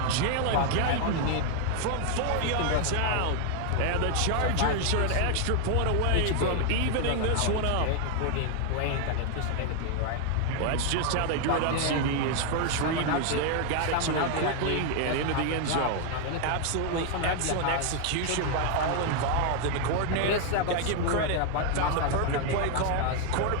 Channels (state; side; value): different; both; correlation 0.00